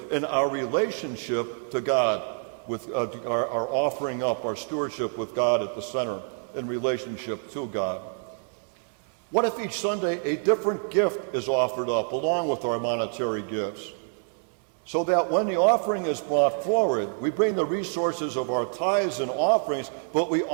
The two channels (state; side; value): silent; left; 60 dB below the other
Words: and our relationship to God, with our offering up, our stewardship with God at the center in relationship to God. What if each Sunday a different gift is offered up along with our monetary gifts? So that when the offering is brought forward, we bring the resources of our tithes and offerings, but we